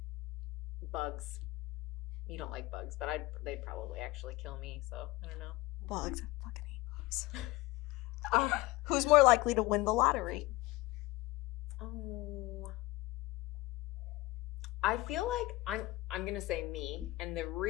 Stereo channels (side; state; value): right; quieter; 19.6 dB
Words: bugs. You don't like bugs, but they'd probably actually kill me. So I don't know. Bugs. I fucking hate bugs. Who's more likely to win the lottery? Oh. I feel like I'm going to say me, and the